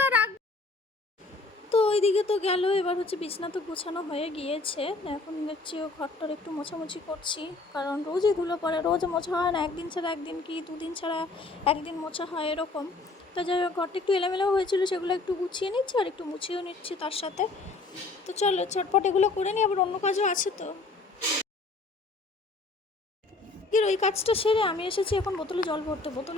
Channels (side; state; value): right; quieter; 3.5 dB